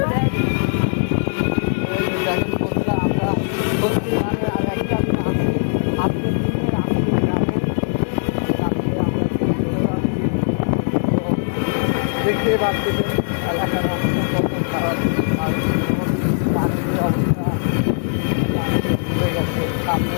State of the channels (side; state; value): right; silent; digital silence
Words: দেখেন বন্ধুরা, আমরা মানে আর একটা দিন আসি, আজকের দিনে আসি গ্রামে, কালকে আমরা চলে যাচ্ছি। তো দেখতে পাচ্ছেন এলাকার অবস্থা কত খারাপ, আর পানির অবস্থা